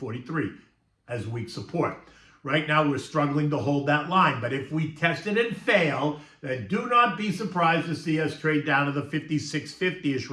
as weak support. Right now, we're struggling to hold that line. But if we test it and fail, then do not be surprised to see us trade down to the 56.50-ish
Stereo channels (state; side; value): identical; both; correlation 1.00